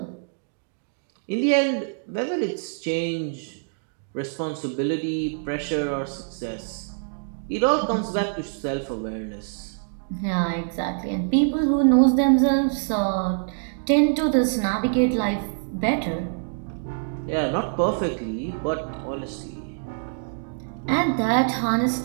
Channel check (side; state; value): left; silent; digital silence